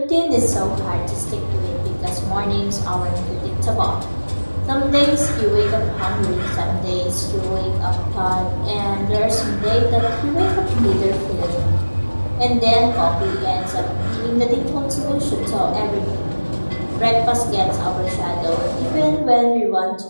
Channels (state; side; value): inverted; both; correlation -1.00